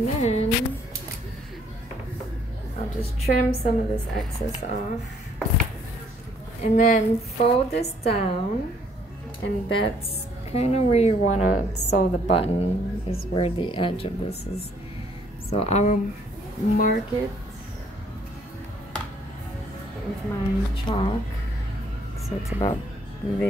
then I'll just trim some of this excess off. And then fold this down, and that's kind of where you want to sew the button, is where the edge of this is. So I will mark it with my chalk, so it's about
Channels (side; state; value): both; normal; correlation 0.64